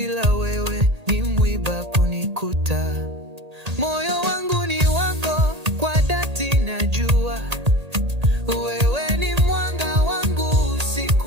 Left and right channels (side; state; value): left; late; 1.8 ms